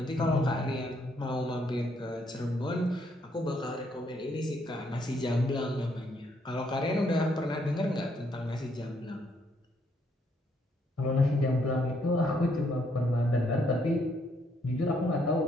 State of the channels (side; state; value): both; normal; correlation 0.72